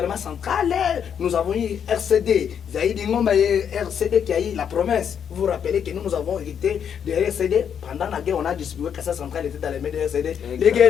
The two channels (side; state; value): right; quieter; 8.0 dB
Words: central. Nous avons eu RCD. RCD qui a eu la promesse. Vous vous rappelez que nous avons hérité de RCD. Pendant la guerre, on a distribué que ça centrale était dans les mains de RCD. Exact. Les